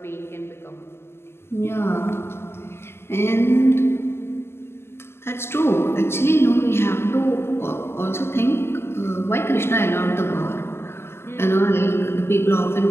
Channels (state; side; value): late; right; 0.12 ms